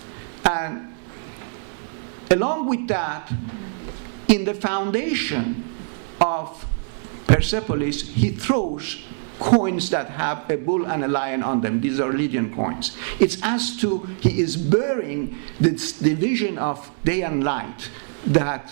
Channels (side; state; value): left; silent; 63 dB below the other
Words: And along with that, in the foundation of Persepolis, he throws coins that have a bull and a lion on them. These are Lydian coins. It's as to he is burying this division of day and light